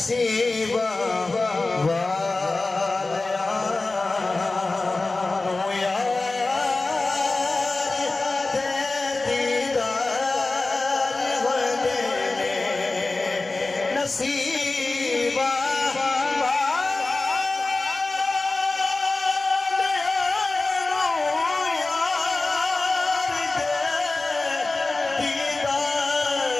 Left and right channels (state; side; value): quieter; right; 3.3 dB